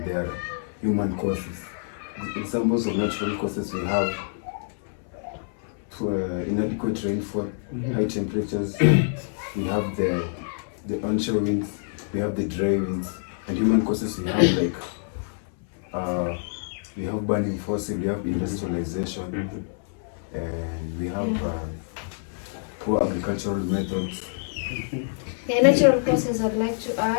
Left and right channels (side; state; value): right; silent; 61 dB below the other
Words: there are human causes. Examples of natural causes we have inadequate rainfall, high temperatures, we have the onshore winds, we have the dry winds, and human causes we have like we have burning fossil, we have industrialization, and we have poor agricultural methods. The natural causes I'd like to